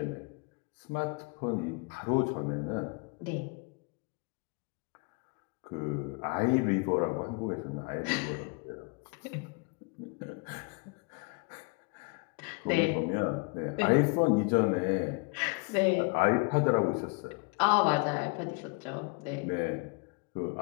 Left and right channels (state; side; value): quieter; right; 30.1 dB